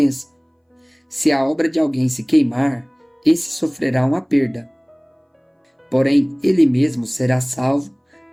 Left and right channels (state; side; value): identical; both; correlation 1.00